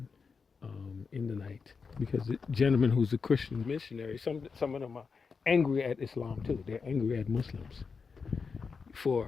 in the night because the gentleman who's a Christian missionary, some of them are angry at Islam too. They're angry at Muslims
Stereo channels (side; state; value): right; quieter; 5.2 dB